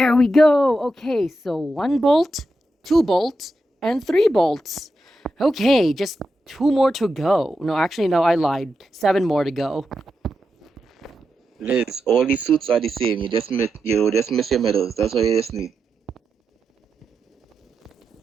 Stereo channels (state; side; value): normal; both; correlation 0.87